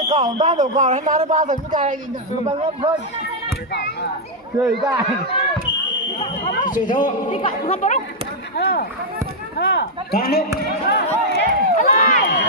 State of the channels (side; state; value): both; normal; correlation -0.03